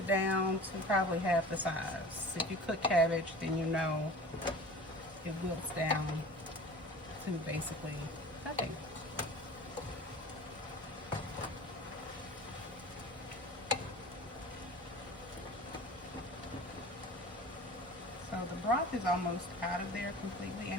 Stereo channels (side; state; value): both; normal; correlation 0.39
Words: down to probably half the size. If you cook cabbage, then you know it wilts down to basically nothing. So the broth is almost out of there completely,